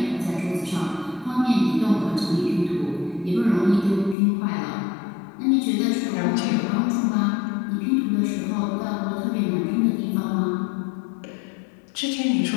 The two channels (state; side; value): drops out; right; at 4.2 s